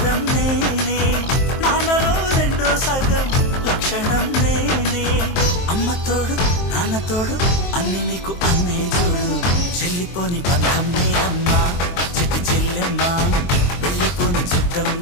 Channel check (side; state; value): right; late; 23 ms